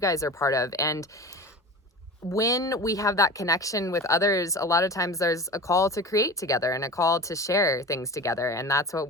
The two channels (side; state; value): both; normal; correlation 0.33